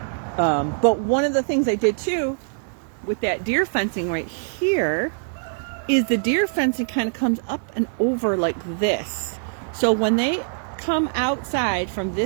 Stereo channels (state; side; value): silent; left; digital silence